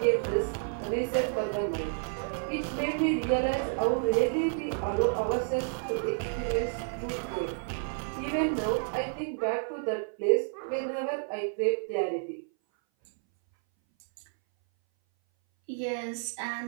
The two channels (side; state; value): left; silent; 58 dB below the other